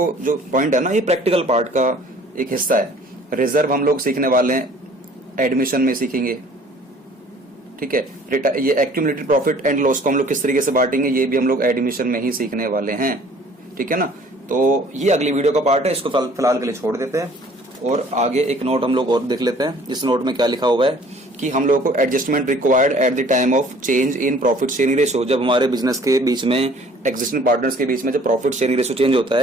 जो पॉइंट है ना, ये प्रैक्टिकल पार्ट का एक हिस्सा है। रिजर्व हम लोग सीखने वाले हैं, एडमिशन में सीखेंगे। ठीक है, ये एक्यूमुलेटेड प्रॉफिट एंड लॉस को हम लोग किस तरीके से बांटेंगे, ये भी हम लोग एडमिशन में ही सीखने वाले हैं। ठीक है ना, तो ये अगली वीडियो का पार्ट है, इसको फिलहाल के लिए छोड़ देते हैं और आगे एक नोट हम लोग और देख लेते हैं। इस नोट में क्या लिखा हुआ है कि हम लोगों को adjustment required at the time of change in profit sharing ratio. जब हमारे बिजनेस के बीच में, एग्जिस्टिंग पार्टनर्स के बीच में जब प्रॉफिट शेयरिंग रेशियो चेंज होता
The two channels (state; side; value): normal; both; correlation 0.53